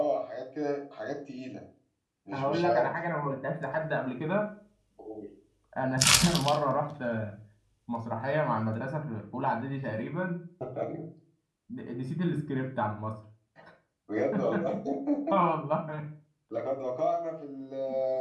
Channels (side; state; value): both; identical; correlation 1.00